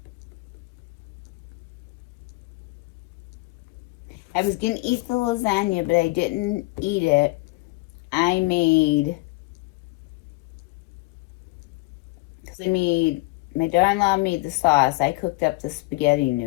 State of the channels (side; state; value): right; quieter; 23.3 dB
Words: I was going to eat the lasagna, but I didn't eat it. My daughter-in-law made the sauce. I cooked up the spaghetti